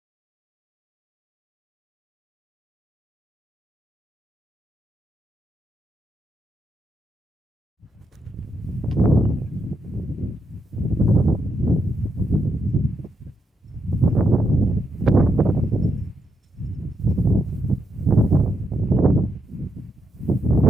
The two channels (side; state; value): both; normal; correlation 0.81